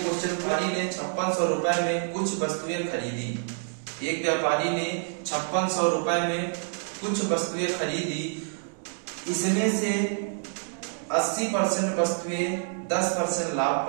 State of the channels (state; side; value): silent; left; 60 dB below the other